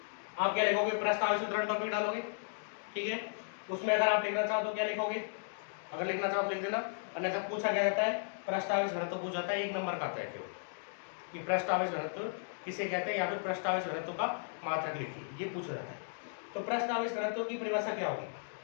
आप क्या लिखोगे, पृष्ठ आवेश वितरण टॉपिक डालोगे, ठीक है। उसमें अगर आप लिखना चाहो तो क्या लिखोगे, अगर लिखना चाहो तो लिख देना, अन्यथा पूछा क्या जाता है, पृष्ठ आवेश घनत्व पूछा जाता है, 1 नंबर का आता है कि पृष्ठ आवेश घनत्व किसे कहते हैं, या फिर पृष्ठ आवेश घनत्व का मात्रक लिखिए, ये पूछा जाता है। तो पृष्ठ आवेश घनत्व की परिभाषा क्या होगी,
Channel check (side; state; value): right; silent; digital silence